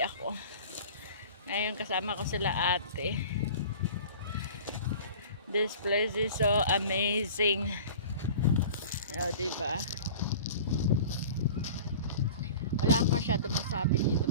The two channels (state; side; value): inverted; both; correlation -0.40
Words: ako. Ngayon kasama ko sila ate. This place is so amazing. O, diba? Wala akong masyado masabi dito